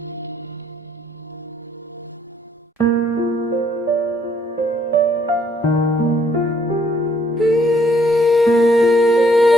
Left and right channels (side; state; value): both; normal; correlation 0.66